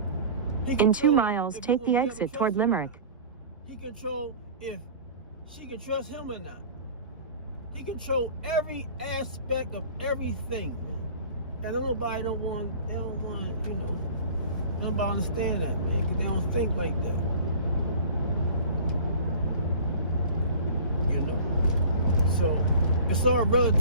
In 2 miles, take the exit toward Limerick. He control if she can trust him or not. He control every aspect of everything. And nobody don't want, you know, nobody understand that, man, because they don't think like that. You know? So, it's all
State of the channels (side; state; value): both; inverted; correlation -0.42